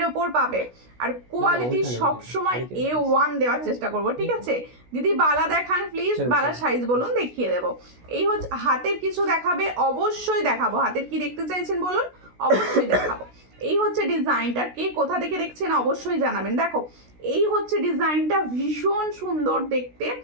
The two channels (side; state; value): left; late; 16 ms